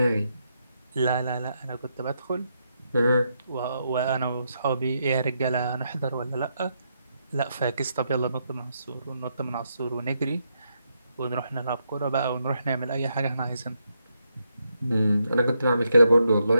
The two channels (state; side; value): inverted; both; correlation -0.80